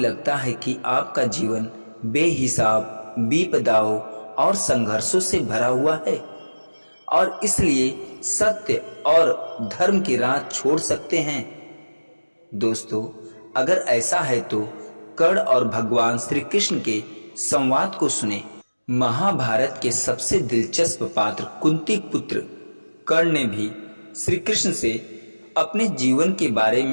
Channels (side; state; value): both; inverted; correlation -1.00